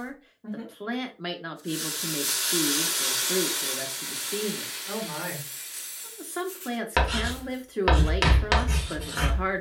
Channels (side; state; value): both; identical; correlation 1.00